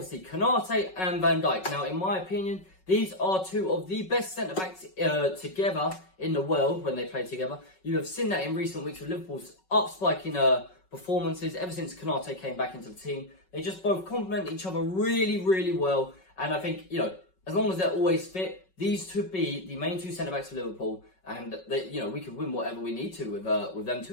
Konate and Van Dijk. Now, in my opinion, these are two of the best centre-backs together in the world when they play together. You have seen that in recent weeks with Liverpool's up-spiking performances ever since Konate came back into the team. They just both complement each other really, really well. And I think, as long as they're always fit, these two be the main two centre-backs for Liverpool. And, we could win whatever we need to with them two,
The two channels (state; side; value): late; right; 5.4 ms